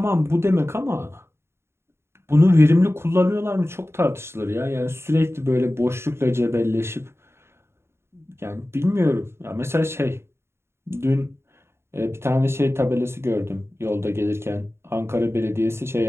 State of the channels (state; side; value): late; left; 0.12 ms